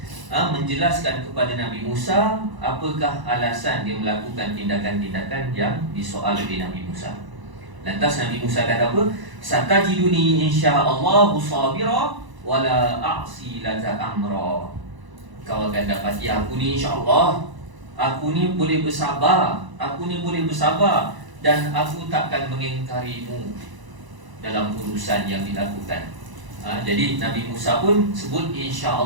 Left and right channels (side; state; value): left; late; 1.0 ms